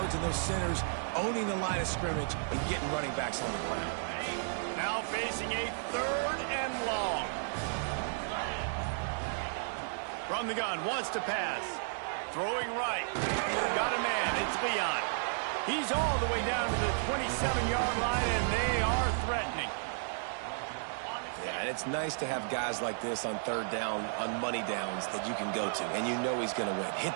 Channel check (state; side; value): silent; left; digital silence